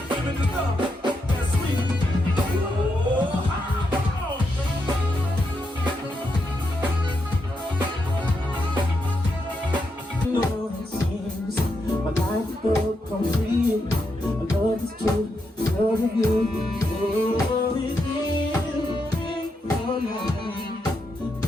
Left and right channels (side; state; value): both; normal; correlation 0.83